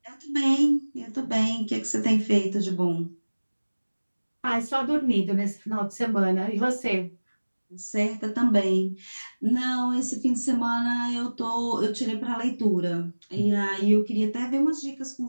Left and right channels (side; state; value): both; inverted; correlation -1.00